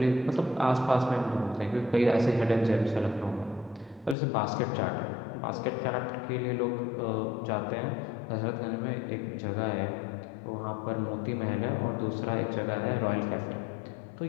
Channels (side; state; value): right; drops out; at 4.2 s